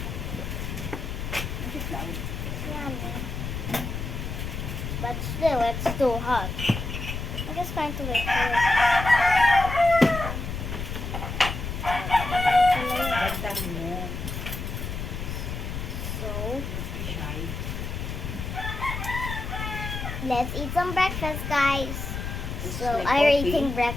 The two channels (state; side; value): noise; left; rumble, 5 dB below the sound